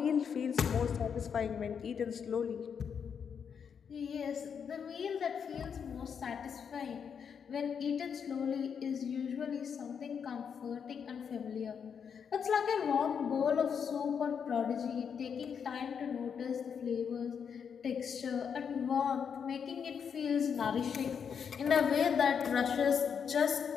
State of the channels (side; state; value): right; quieter; 7.1 dB